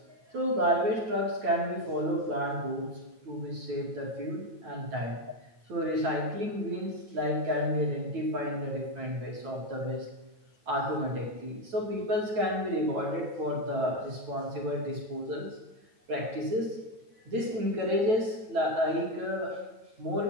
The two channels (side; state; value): left; late; 9.1 ms